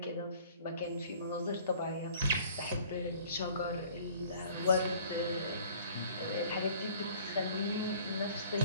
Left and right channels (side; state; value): both; inverted; correlation -0.51